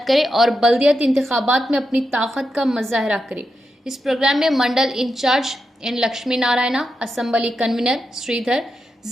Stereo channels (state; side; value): normal; both; correlation 0.86